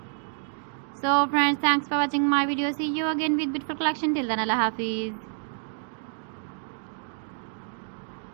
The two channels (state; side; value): silent; left; 59 dB below the other